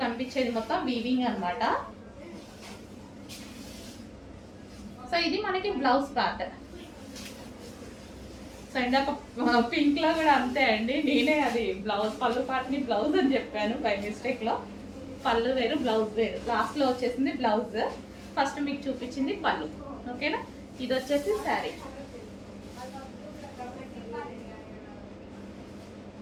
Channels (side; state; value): both; identical; correlation 1.00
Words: కనిపించేది మొత్తం వీవింగ్ అనమాట. సో ఇది మనకి బ్లౌజ్ పార్ట్. సో ఇందాక పింక్ లో కూడా అంతే అండి, నేనే అది బ్లౌజ్ పళ్ళు పార్ట్ని బ్లౌజ్ అని చెప్పాను బై మిస్టేక్ లో. పళ్ళు వేరు బ్లౌజ్ వేరు, లాస్ట్ లో వచ్చేసింది బ్లౌజ్, ఫస్ట్ మీకు చూపించింది పళ్ళు. ఓకేనా, ఇది వచ్చేసి శారీ.